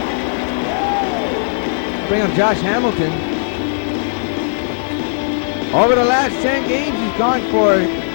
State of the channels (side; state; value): right; silent; digital silence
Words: Bring up Josh Hamilton. Over the last 10 games, he's gone for